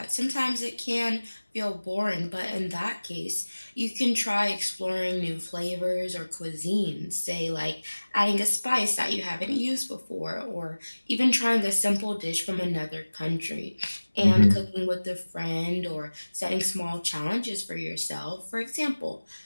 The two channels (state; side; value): inverted; both; correlation -1.00